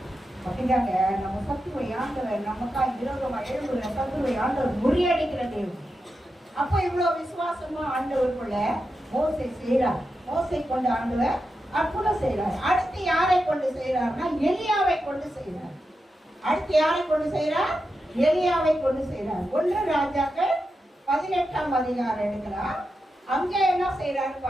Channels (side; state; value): both; normal; correlation 0.89